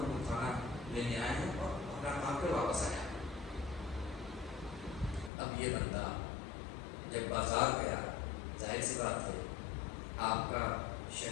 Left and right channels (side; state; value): right; drops out; at 5.3 s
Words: لوگ کھانا لینے آئے ہیں اور اپنا کام کر واپس آیا. اب یہ بندہ جب بازار گیا، ظاہر سی بات ہے آپ کا